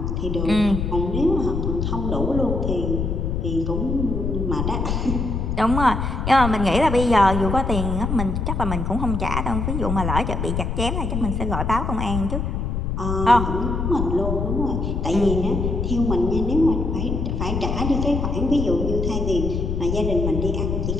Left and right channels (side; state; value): left; noise; rumble, 1 dB below the sound